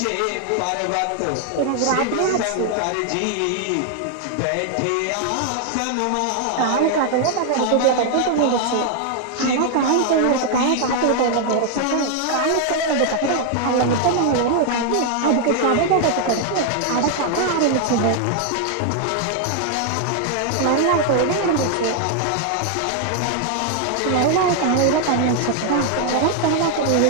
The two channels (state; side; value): different; both; correlation 0.00